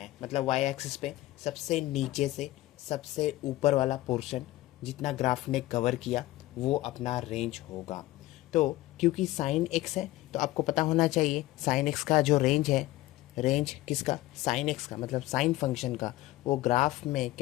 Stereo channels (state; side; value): quieter; right; 17.1 dB